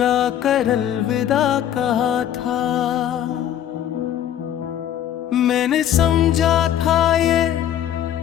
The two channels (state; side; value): quieter; right; 10.6 dB